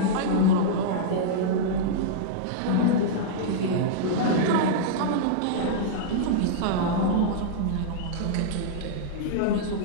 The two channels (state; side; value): different; both; correlation -0.02